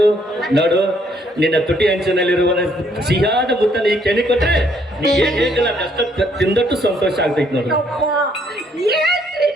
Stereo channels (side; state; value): both; normal; correlation 0.68